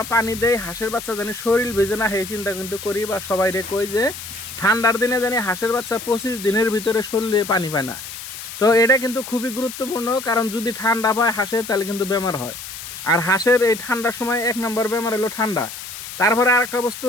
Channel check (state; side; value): noise; left; hiss, 11 dB below the sound